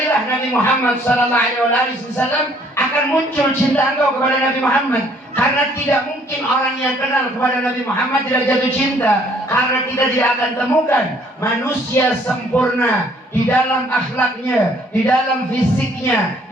Nabi Muhammad sallallahu alaihi wasallam, akan muncul cinta engkau kepada Nabi Muhammad. Karena tidak mungkin orang yang kenal kepada Nabi Muhammad tidak jatuh cinta. Karena kita tidak akan temukan manusia sempurna di dalam akhlaknya, di dalam fisiknya,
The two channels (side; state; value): both; normal; correlation 0.61